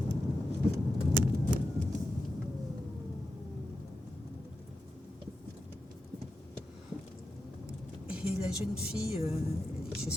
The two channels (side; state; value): both; normal; correlation 0.90